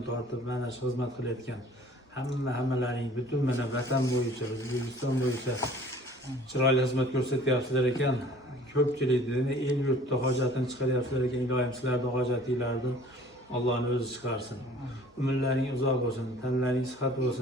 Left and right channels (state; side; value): normal; both; correlation 0.50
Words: tortib mana shu xizmat qilayotgan hammalaring butun mana vatan bo'yicha, O'zbekiston bo'yicha chiroyli xizmat ko'rsatyapsizlar ekan. Ko'pchilikni el yurtda hojatini chiqaryapsizlar ekan. Ilohim sizlarning hojatinglarni Allohning o'zi chiqarsin. Umrlaring uzoq bo'lsin, tanlaring sihat